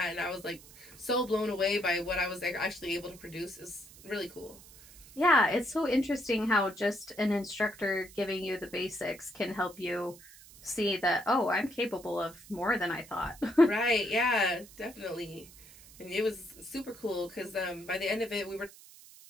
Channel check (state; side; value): noise; right; hiss, 20 dB below the sound